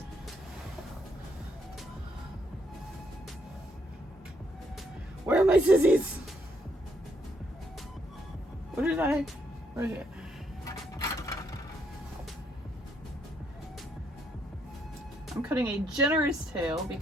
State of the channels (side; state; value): both; normal; correlation 0.73